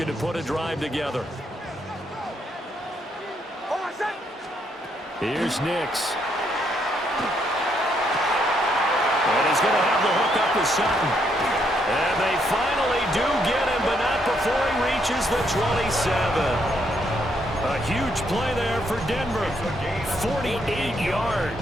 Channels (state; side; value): normal; both; correlation 0.74